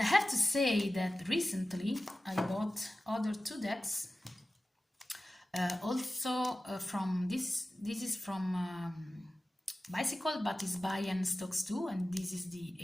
I have to say that recently I bought other two decks. Also from this is from Bicycle, but it's by and Stokes too, and this is the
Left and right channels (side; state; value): both; normal; correlation 0.96